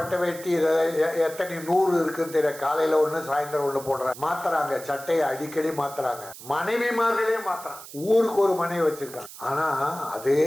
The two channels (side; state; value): right; noise; hiss, 15 dB below the sound